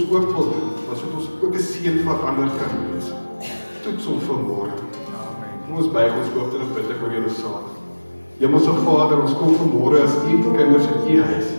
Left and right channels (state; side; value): inverted; both; correlation -1.00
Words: ook wil doen, sodat ons ook 'n seën vir ander kan wees. Toets ons vanmôre. Kom ons buig ons hoofde en bid ek oor julle saad. Hemelse Vader, ons kom vanmôre as u kinders in u huis,